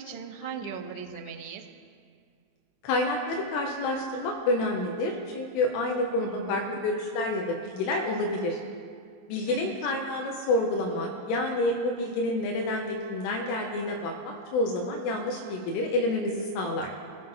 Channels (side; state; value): right; late; 22 ms